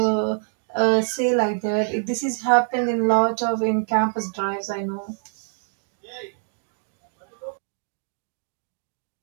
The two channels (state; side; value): silent; left; digital silence